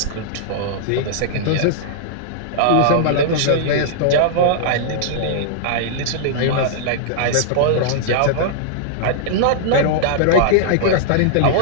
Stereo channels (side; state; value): both; different; correlation -0.01